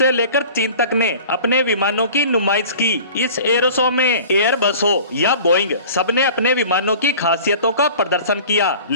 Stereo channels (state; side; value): inverted; both; correlation -0.42